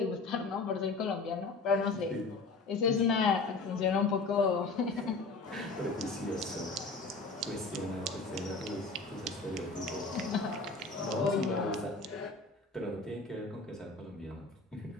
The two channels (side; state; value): right; quieter; 3.8 dB